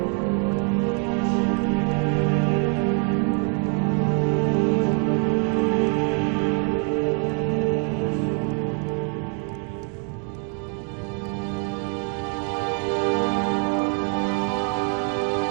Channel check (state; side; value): quieter; left; 37.9 dB